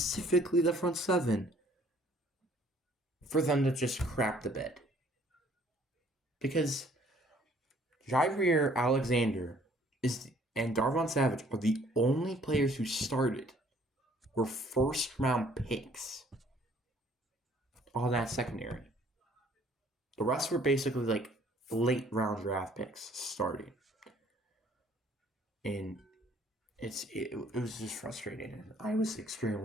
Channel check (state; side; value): normal; both; correlation 0.59